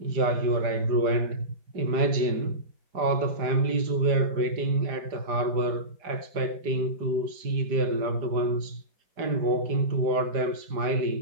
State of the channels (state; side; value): late; left; 4.9 ms